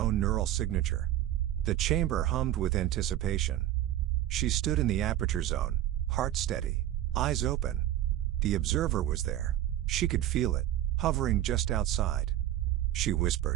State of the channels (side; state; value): left; quieter; 12.9 dB